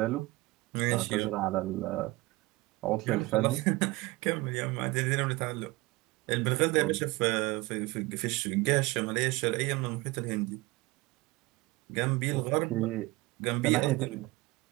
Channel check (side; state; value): left; quieter; 21.7 dB